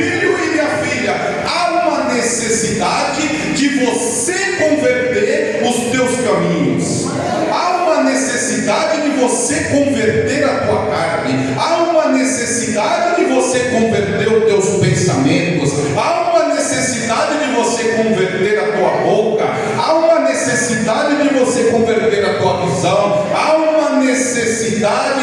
e minha filha, há uma necessidade de você converter os teus caminhos. Há uma necessidade de você converter a tua carne. Há uma necessidade de você converter os teus pensamentos. Há uma necessidade de você converter a tua boca. Há uma necessidade de você converter a tua visão. Há uma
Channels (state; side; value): identical; both; correlation 1.00